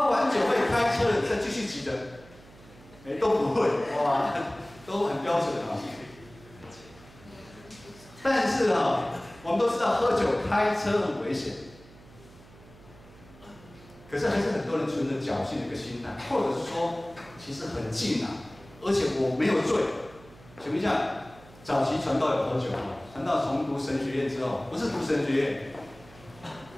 完酒会开车的再继续举的，都不会，哇，都很标准啊。但是我们都知道喝酒开车很危险。可是还是很多人存着侥幸的一个心态，或者是说，其实很近而且我没有醉。请问一下，早期传道有喝酒吗？传道从读神学院之后，不是读神学院，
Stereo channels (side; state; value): right; noise; hum, 22 dB below the sound